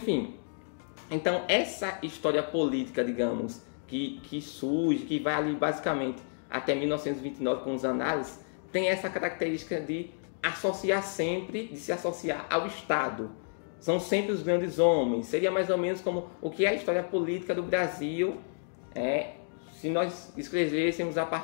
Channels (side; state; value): right; silent; digital silence